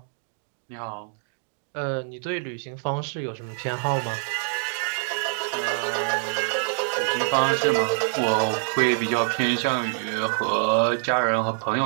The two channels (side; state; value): left; silent; digital silence